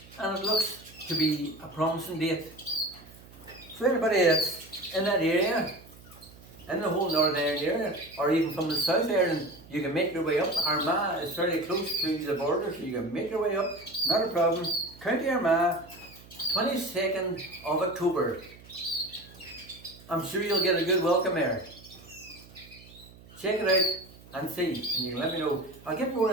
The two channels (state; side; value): noise; right; hum, 21 dB below the sound